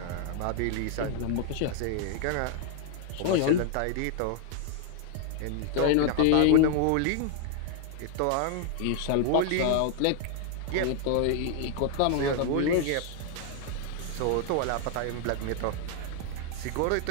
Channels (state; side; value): different; both; correlation 0.00